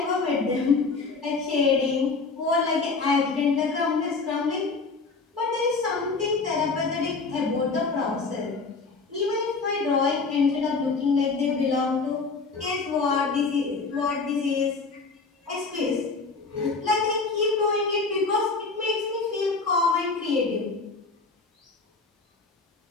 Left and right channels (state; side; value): quieter; right; 4.2 dB